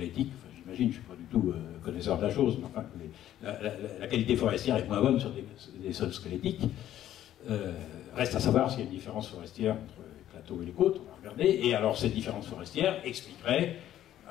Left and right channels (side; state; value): right; quieter; 12.2 dB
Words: enfin, j'imagine, je ne suis pas du tout connaisseur de la chose, mais enfin, la qualité forestière est moins bonne sur des sols squelettiques. Reste à savoir s'il y a une différence forestière entre les plateaux et les côtes, on va regarder, et alors cette différence forestière expliquerait,